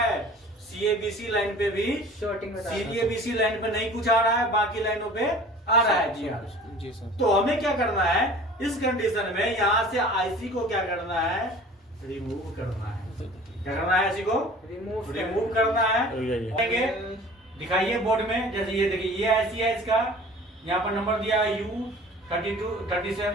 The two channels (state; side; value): normal; both; correlation 0.44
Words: सीएबीसी लाइन पे भी शॉर्टिंग में सीएबीसी लाइन पे नहीं कुछ आ रहा है, बाकी लाइनों पे आ रहा है जीआर। जी सर। तो हमें क्या करना है इस कंडीशन में, यहाँ से आईसी को क्या करना है, रिमूव करना है। क्या करना है, आईसी को रिमूव करना है। दिखाइए बोर्ड में, जैसे ये देखिए ये आईसी है, इसका यहाँ पर नंबर दिया है